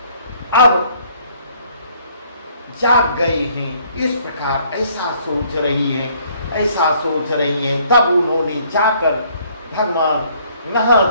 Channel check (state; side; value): inverted; both; correlation -0.63